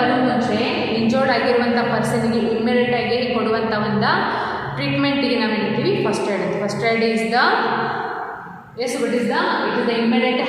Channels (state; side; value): identical; both; correlation 1.00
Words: ಮುಂಚೆ ಇಂಜೋರ್ಡ್ ಆಗಿರುವಂಥ ಪರ್ಸನಿಗೆ ಇಮ್ಮಿಡಿಯೇಟ್ ಆಗಿ ಕೊಡುವಂಥ ಒಂದು ಟ್ರೀಟ್ಮೆಂಟಿಗೆ ನಾವು ಹೇಳ್ತೀವಿ first aid. First aid is the what is the it is the immediate